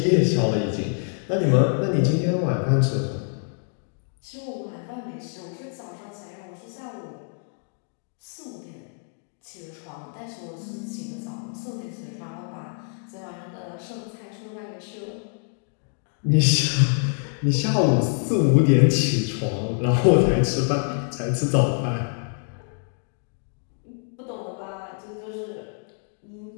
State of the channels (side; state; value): right; silent; 58 dB below the other